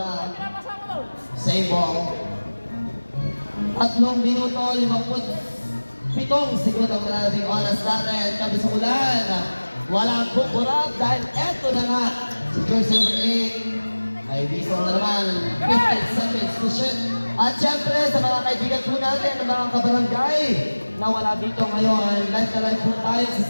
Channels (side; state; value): both; inverted; correlation -1.00